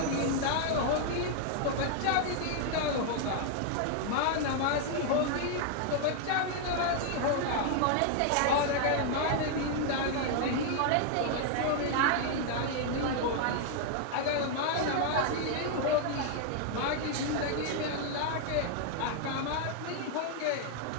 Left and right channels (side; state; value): both; different; correlation 0.00